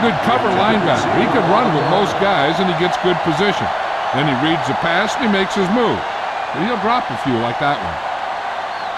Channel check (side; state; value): both; identical; correlation 1.00